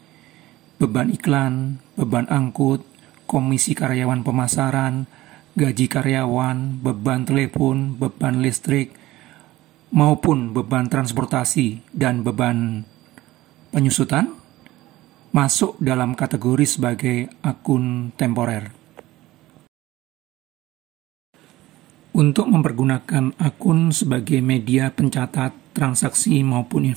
beban iklan, beban angkut, komisi karyawan pemasaran, gaji karyawan, beban telepon, beban listrik, maupun beban transportasi dan beban penyusutan masuk dalam kategori sebagai akun temporer. Untuk mempergunakan akun sebagai media pencatat transaksi maupun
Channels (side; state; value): left; quieter; 17.1 dB